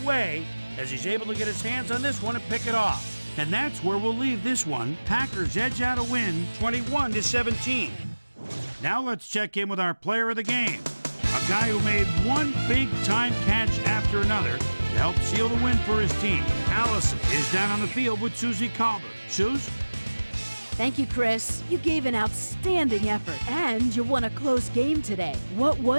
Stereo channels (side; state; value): both; inverted; correlation -1.00